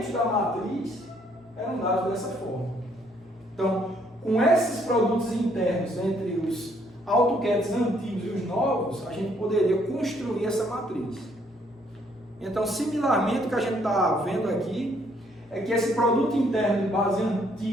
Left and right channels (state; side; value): normal; both; correlation 0.67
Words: da matriz eram dados dessa forma. Então, com esses produtos internos entre os AutoCADs antigos e os novos, a gente poderia construir essa matriz. Então, similarmente, o que a gente está vendo aqui é que esse produto interno de base